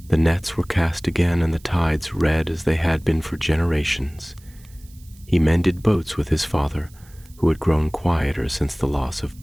The nets were cast again and the tides red as they had been for generations. He mended boats with his father, who had grown quieter since the loss of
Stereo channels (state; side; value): noise; right; hiss, 27 dB below the sound